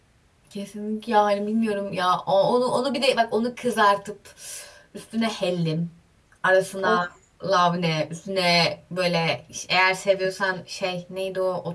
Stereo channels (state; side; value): identical; both; correlation 1.00